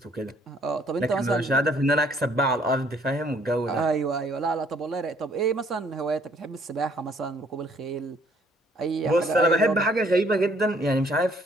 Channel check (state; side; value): normal; both; correlation 0.63